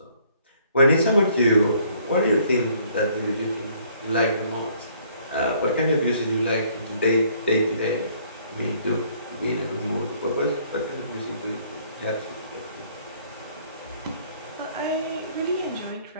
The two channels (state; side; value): inverted; both; correlation -0.62